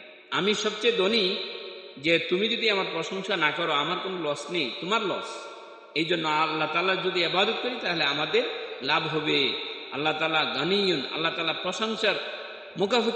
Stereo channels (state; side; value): identical; both; correlation 1.00